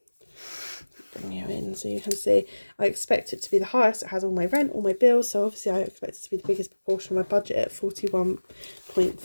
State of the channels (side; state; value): both; inverted; correlation -1.00